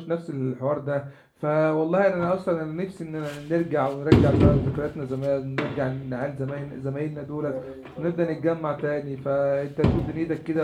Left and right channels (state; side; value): identical; both; correlation 1.00